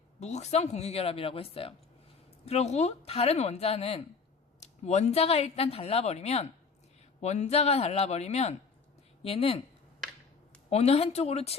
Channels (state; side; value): quieter; right; 5.1 dB